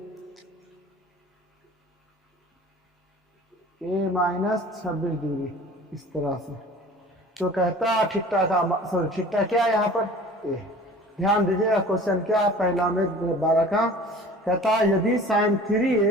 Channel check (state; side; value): normal; both; correlation 0.44